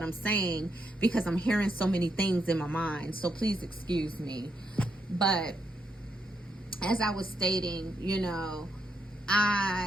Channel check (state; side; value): normal; both; correlation 0.79